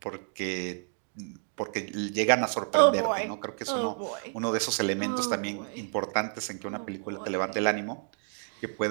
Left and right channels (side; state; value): left; silent; digital silence